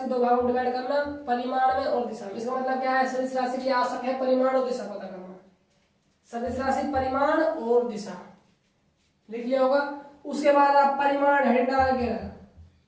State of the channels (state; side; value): identical; both; correlation 1.00